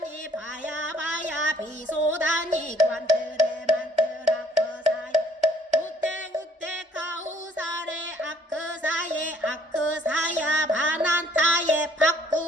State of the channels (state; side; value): normal; both; correlation 0.62